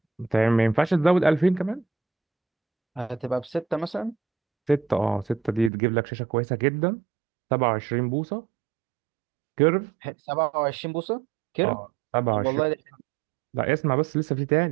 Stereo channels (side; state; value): left; drops out; at 5.7 s